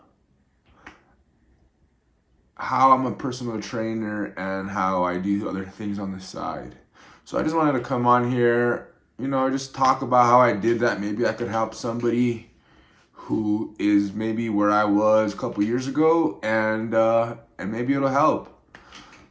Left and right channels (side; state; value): both; identical; correlation 1.00